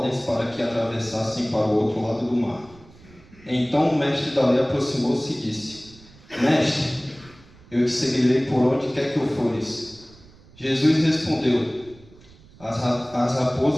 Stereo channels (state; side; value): noise; right; rumble, 24 dB below the sound